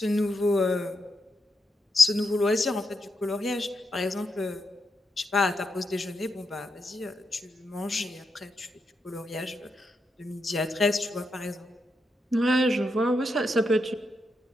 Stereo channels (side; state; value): both; normal; correlation 0.84